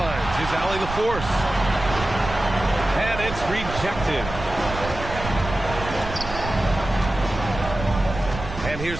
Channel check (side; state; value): right; noise; rumble, 9 dB below the sound